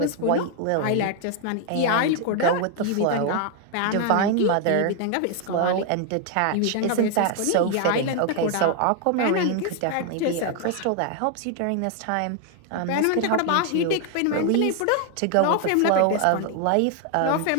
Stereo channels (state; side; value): different; both; correlation 0.00